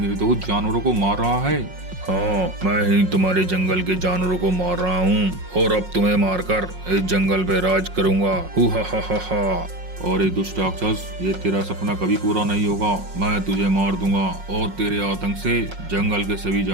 जानवरों को मार रहा है। हाँ, मैं ही तुम्हारे जंगल के जानवरों को मार रहा हूँ और अब तुम्हें मारकर इस जंगल पे राज करूंगा। हु हा हा हा हा। और ये दुष्ट राक्षस, ये तेरा सपना कभी पूरा नहीं होगा। मैं तुझे मार दूंगा और तेरे आतंक से जंगल के सभी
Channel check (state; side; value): late; left; 5.5 ms